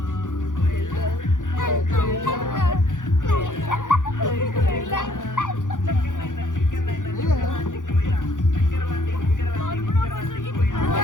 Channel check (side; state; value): right; late; 0.88 ms